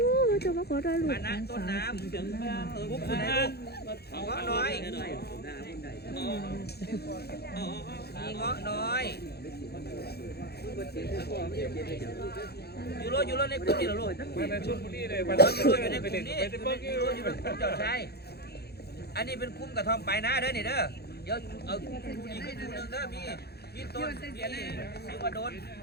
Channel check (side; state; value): right; late; 0.47 ms